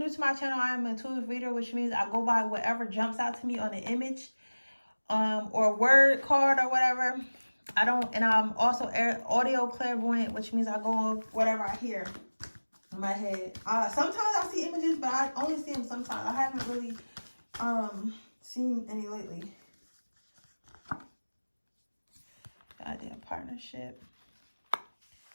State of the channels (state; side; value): inverted; both; correlation -1.00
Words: to my channel, I am an intuitive reader, which means I go by whatever jumps out to me on an image, or word card or whatever. And I'm also audio clairvoyant, which means I go on whatever I hear in my head. Sometimes I see images, but I only see them sometimes. I haven't really seen any lately. Goddamn partnership.